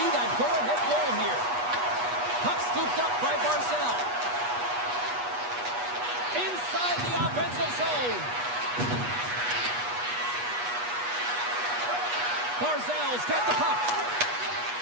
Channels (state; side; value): late; left; 8.3 ms